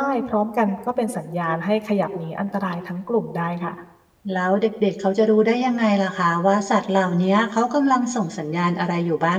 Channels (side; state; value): both; identical; correlation 1.00